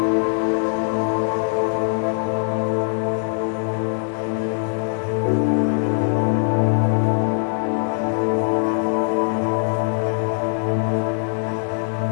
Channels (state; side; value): silent; right; digital silence